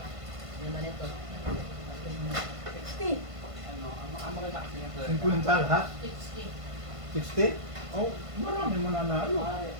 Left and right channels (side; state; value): left; late; 1.5 ms